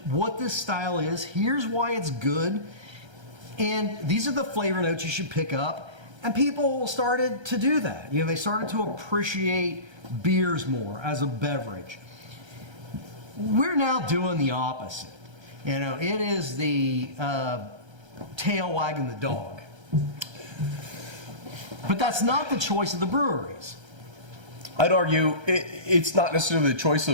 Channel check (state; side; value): late; left; 1.3 ms